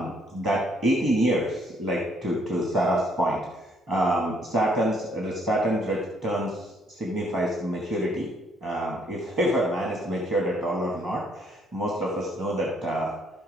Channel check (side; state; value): both; normal; correlation 0.68